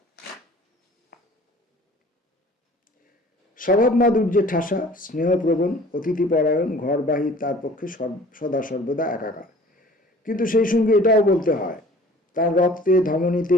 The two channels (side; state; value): both; normal; correlation 0.49